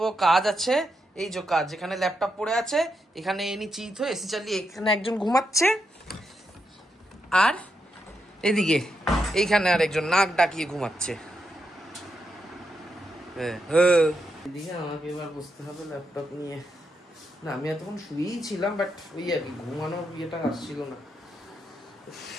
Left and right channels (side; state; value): both; normal; correlation 0.83